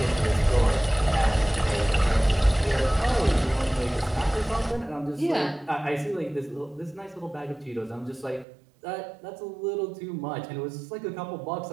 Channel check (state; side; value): drops out; left; at 8.5 s